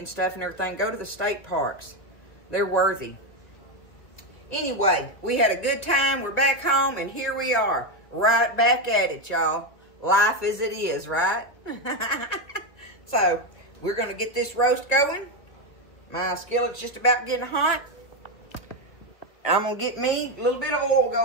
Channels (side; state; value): right; late; 2.1 ms